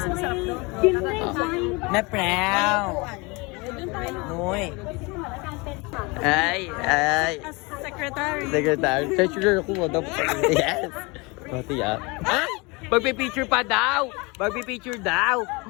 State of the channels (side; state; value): right; quieter; 27.0 dB